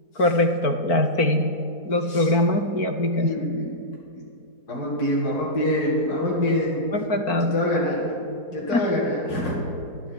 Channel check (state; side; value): late; right; 4.5 ms